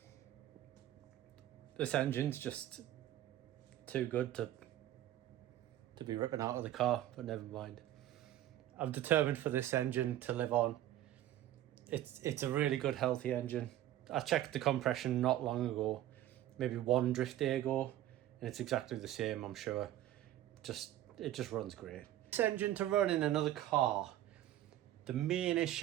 This engine's just too good to be ripping out of the car, but never mind. I'm determined for this engine to live on. It's a really good, healthy engine. I checked the compression not long ago, maybe one drift day ago, and it's exactly the same, I'm sure. It just runs great. This engine to run in another car, the main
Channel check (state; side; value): quieter; left; 13.2 dB